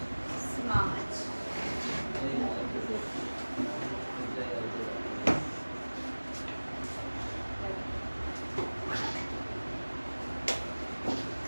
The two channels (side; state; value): both; inverted; correlation -1.00